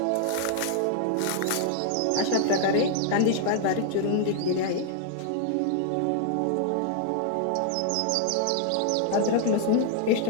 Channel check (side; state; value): both; different; correlation 0.00